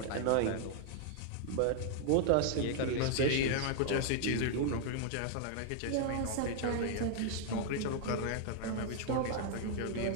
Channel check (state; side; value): different; both; correlation 0.00